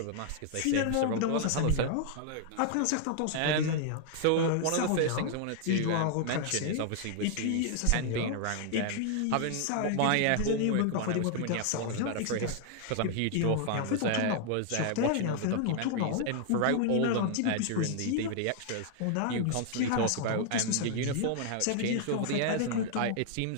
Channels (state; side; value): different; both; correlation 0.00